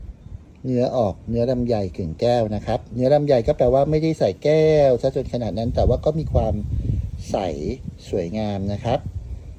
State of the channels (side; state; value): both; identical; correlation 1.00